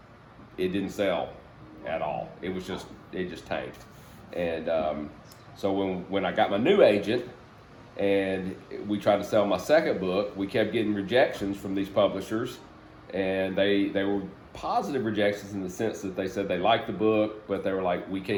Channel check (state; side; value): identical; both; correlation 1.00